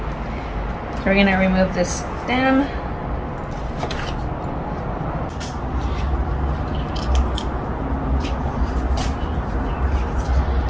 so we're gonna remove this stem.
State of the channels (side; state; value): both; identical; correlation 1.00